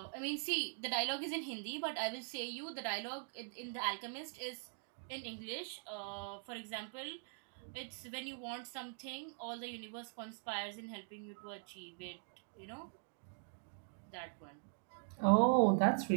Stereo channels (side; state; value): left; silent; digital silence